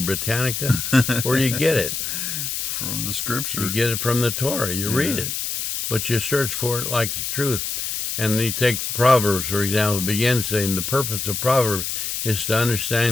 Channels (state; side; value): noise; left; hiss, 3 dB below the sound